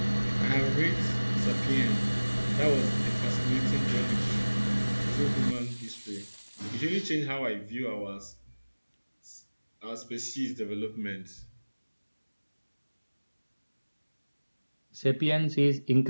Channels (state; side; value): inverted; both; correlation -1.00